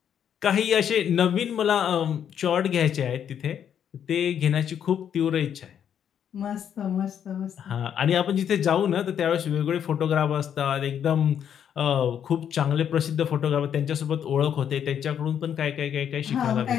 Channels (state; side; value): quieter; right; 8.8 dB